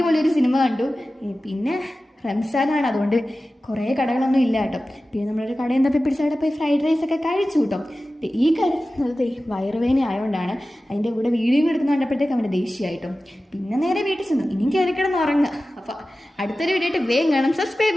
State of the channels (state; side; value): normal; both; correlation 0.95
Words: സിനിമ കണ്ടു. പിന്നെ റംസാനാണ്, അതുകൊണ്ട് കുറേ കടകളൊന്നും ഇല്ല കേട്ടോ. പിന്നെ നമ്മളൊരു കടയിൽ തപ്പി പിടിച്ചവിടെ പോയി ഫ്രൈഡ് റൈസ് ഒക്കെ കഴിച്ചു കേട്ടോ. ഈ കഴിക്കുന്നത് വയറുവേദന ആയതുകൊണ്ടാണ്. അതിൻ്റെ കൂടെ വീഡിയോ എടുക്കുന്ന കണ്ടപ്പോഴത്തേക്ക് അവൻ്റെ ദേഷ്യമായിട്ടും. പിന്നെ നേരെ വീട്ടിൽ ചെന്നു. ഇനിയും കയറി കിടന്ന് ഉറങ്ങുക. അപ്പോൾ അടുത്തൊരു വീഡിയോ ആയിട്ട് വേഗം കാണാം. സബ്സ്ക്രൈബ്